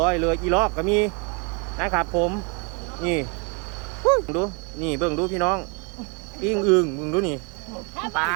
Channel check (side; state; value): left; quieter; 33.5 dB